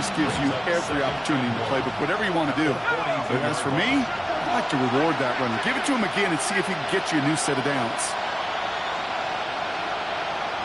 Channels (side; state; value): both; identical; correlation 1.00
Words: gives you every opportunity to play, but whatever you want to do. But as for me, I like to reward that runner. Give it to him again and see if he can get you a new set of downs.